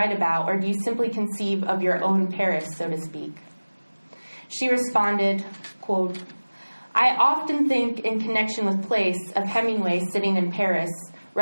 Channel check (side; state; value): both; inverted; correlation -1.00